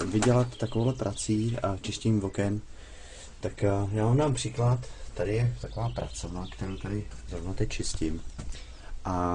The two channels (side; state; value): both; identical; correlation 1.00